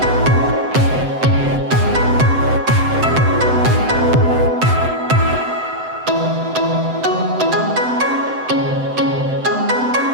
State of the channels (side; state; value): left; late; 7.8 ms